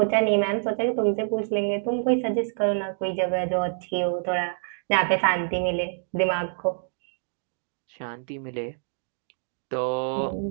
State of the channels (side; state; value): left; silent; digital silence